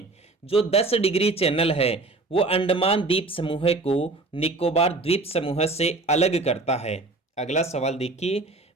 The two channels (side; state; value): left; quieter; 3.2 dB